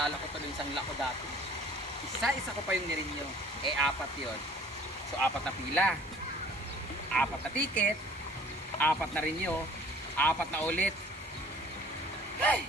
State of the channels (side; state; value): both; normal; correlation 0.50